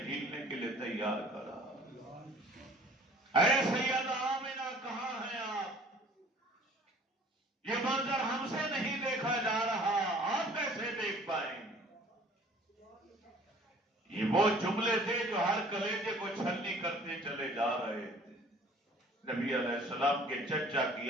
جھیلنے کے لیے تیار کرا۔ اے سیدہ آمنہ، کہاں ہیں آپ؟ یہ منظر ہم سے نہیں دیکھا جا رہا، آپ کیسے دیکھ پائیں گے؟ یہ وہ جملے تھے جو ہر کلیجے کو چھلنی کرتے چلے جا رہے تھے۔ نبی علیہ السلام کے چچا کی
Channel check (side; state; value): both; normal; correlation 0.52